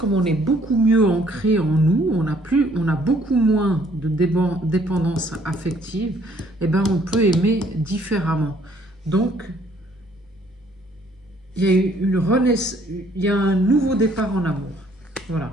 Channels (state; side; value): normal; both; correlation 0.63